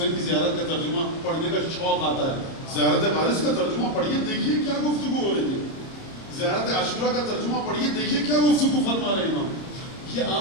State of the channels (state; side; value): late; right; 30 ms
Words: کی زیارت کا ترجمہ پڑھنے کا شوق آتا ہے. زیارت وارث کا ترجمہ پڑھیے، دیکھیے کیا گفتگو ہو رہی ہے. زیارت عاشورہ کا ترجمہ پڑھیے، دیکھیے کیا گفتگو فرما رہے ہیں امام. یہ